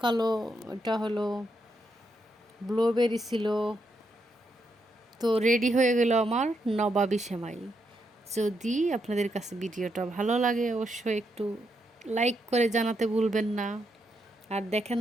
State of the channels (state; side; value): normal; both; correlation 0.80